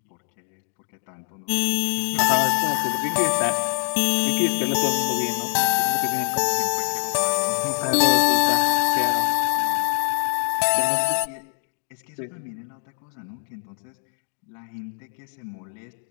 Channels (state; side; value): silent; right; digital silence